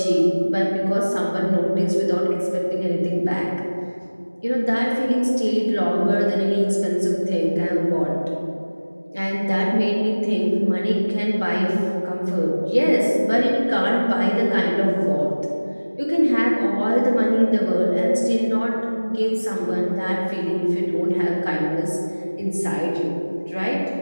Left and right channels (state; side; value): inverted; both; correlation -1.00